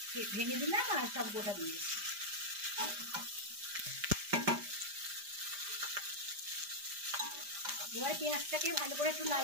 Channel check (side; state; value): left; late; 5.0 ms